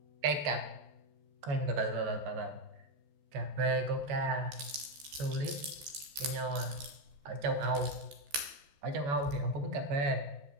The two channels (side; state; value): left; late; 14 ms